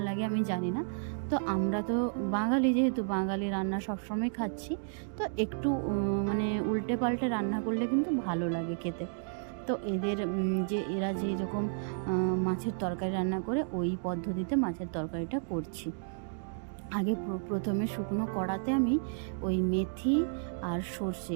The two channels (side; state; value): left; silent; digital silence